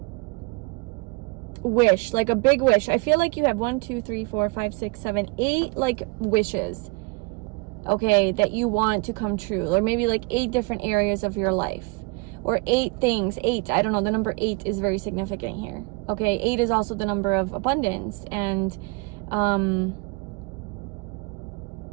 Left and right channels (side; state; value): left; quieter; 27.5 dB